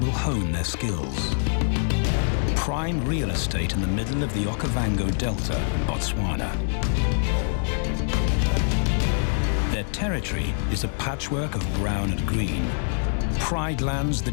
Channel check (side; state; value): right; silent; digital silence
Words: hone their skills. Prime real estate in the middle of the Okavango Delta in Botswana. Their territory is a patchwork of brown and green. Pride lands